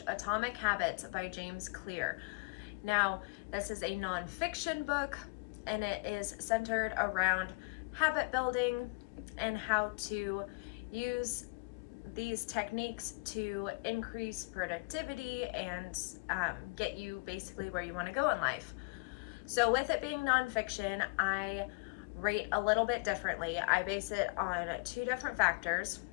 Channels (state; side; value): quieter; right; 31.0 dB